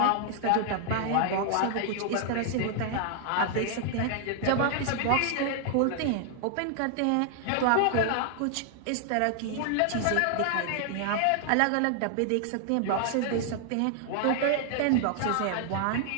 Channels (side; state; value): both; different; correlation 0.00